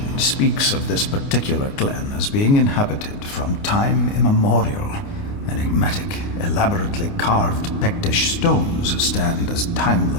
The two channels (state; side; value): late; right; 29 ms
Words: speaks of this particular glen as being inhabited from time immemorial. Enigmatic, elaborately carved Pictish stones stand as